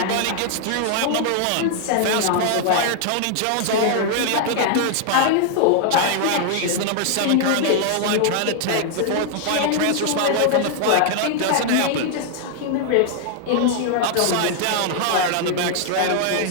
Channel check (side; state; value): both; different; correlation 0.00